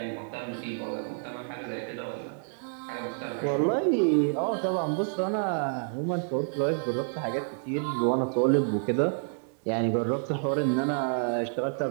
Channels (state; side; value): silent; left; 59 dB below the other